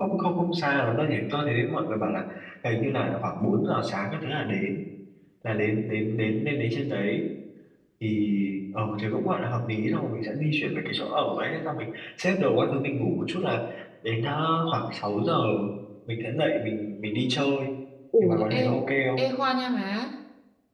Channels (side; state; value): both; identical; correlation 1.00